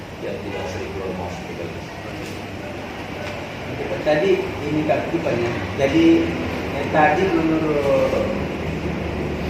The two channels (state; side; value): identical; both; correlation 1.00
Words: ya tidak sering keluar masuk ke kelas. Tadi ini keaktifannya. Jadi tadi menurut